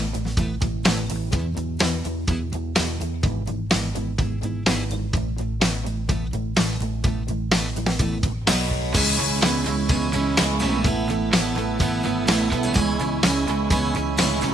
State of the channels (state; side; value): normal; both; correlation 0.80